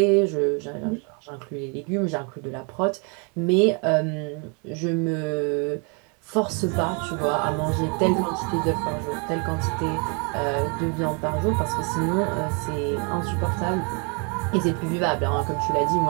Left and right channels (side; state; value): left; quieter; 35.6 dB